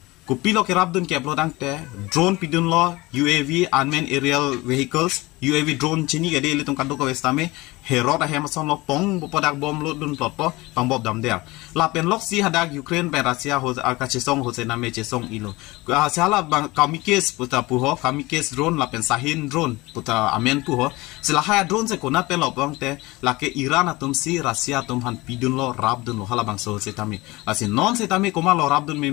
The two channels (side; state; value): right; quieter; 21.5 dB